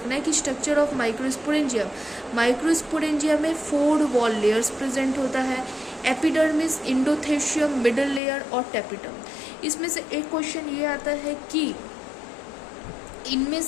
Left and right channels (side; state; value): right; drops out; at 8.2 s